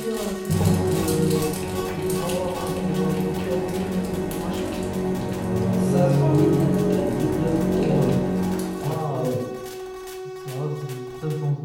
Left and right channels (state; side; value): identical; both; correlation 1.00